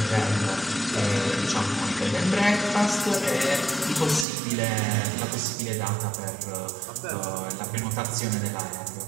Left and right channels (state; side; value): drops out; left; at 4.2 s